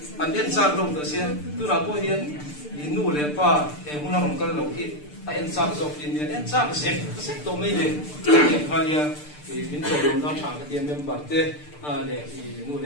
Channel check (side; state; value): right; late; 6.7 ms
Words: anh em sang lồng tới xia tôi là coi hiện nu lệ pa em muốn làm cái lồng kia anh sang dọc hiện em sang cái xếp tổ mấy này hiện khai ya mình tổ lồng đó chẳng cái tiền em bảo thế lệ nu